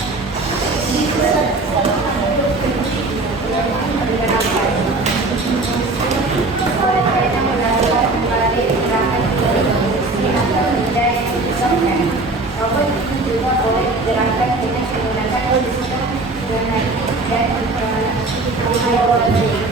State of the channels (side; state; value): left; quieter; 3.1 dB